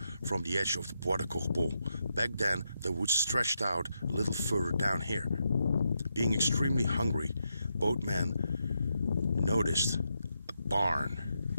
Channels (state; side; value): inverted; both; correlation -0.83